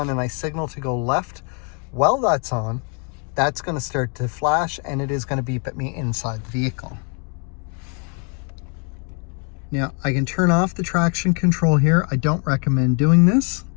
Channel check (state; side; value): quieter; right; 38.7 dB